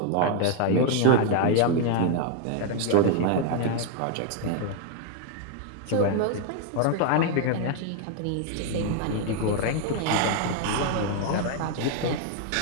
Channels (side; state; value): both; different; correlation 0.01